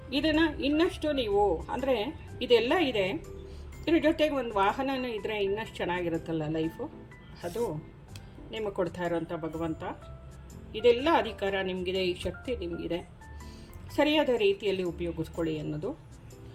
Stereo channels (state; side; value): identical; both; correlation 1.00